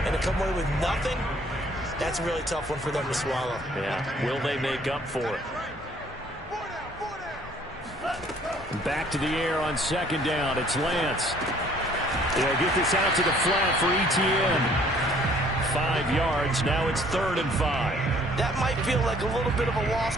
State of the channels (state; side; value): normal; both; correlation 0.59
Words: and to come away with nothing, that's a really tough one for them to swallow. Yeah, will they make up for it? Back to the air on 2nd down. It's Lance. They'll get this out to the flat for Etienne. 5 yards. Now it's 3rd and 5. That might feel like a little bit of a